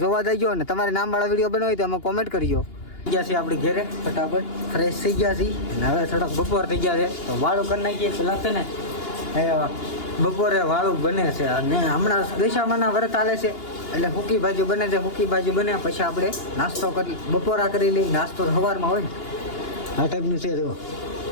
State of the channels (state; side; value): late; right; 2.8 ms